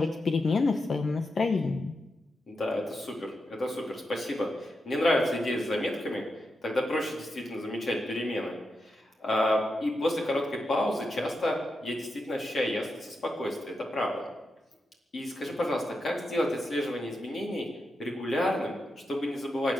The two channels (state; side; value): normal; both; correlation 0.87